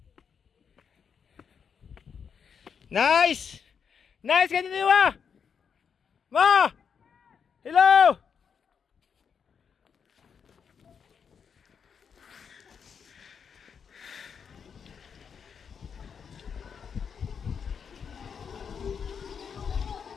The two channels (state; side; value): quieter; right; 6.8 dB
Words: Nice! Ganito ba? Ma! Hello!